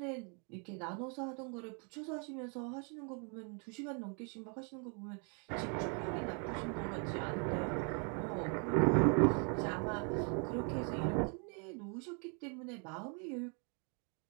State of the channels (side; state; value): left; quieter; 38.2 dB